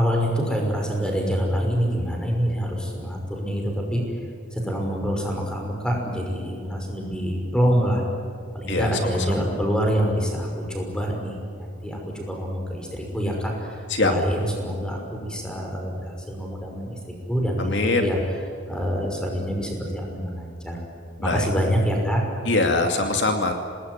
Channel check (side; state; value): both; normal; correlation 0.62